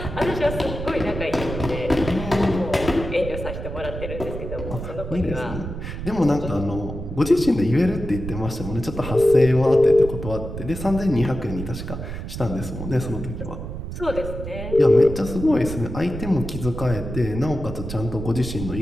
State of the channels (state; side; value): noise; right; rumble, 7 dB below the sound